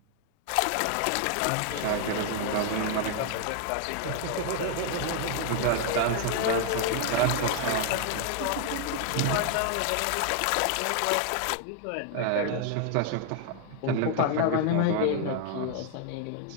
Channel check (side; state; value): both; different; correlation 0.00